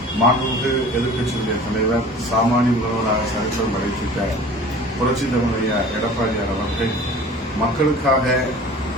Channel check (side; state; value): both; normal; correlation 0.43